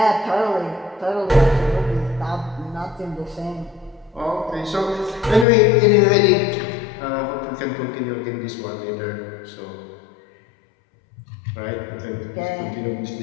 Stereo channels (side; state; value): right; drops out; at 5.5 s